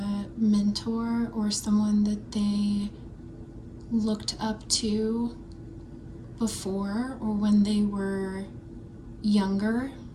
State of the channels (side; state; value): both; identical; correlation 1.00